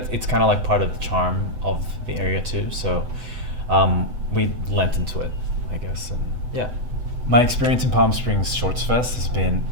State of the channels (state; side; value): late; left; 8.0 ms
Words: it's kind of like part of the charm of the area too. So we lent into it, I guess. And yeah, my experience in Palm Springs Shorts Fest has been